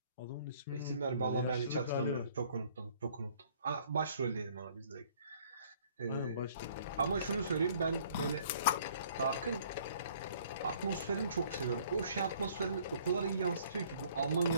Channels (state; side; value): inverted; both; correlation -0.58